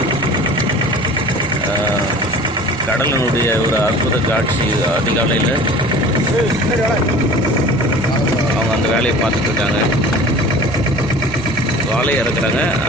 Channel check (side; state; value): both; normal; correlation 0.42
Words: கடலினுடைய ஒரு அற்புத காட்சி. அதிகாலையில் அவங்க அந்த வேலையை பார்த்துட்ருக்காங்க. வாழையை இறக்குறாங்க.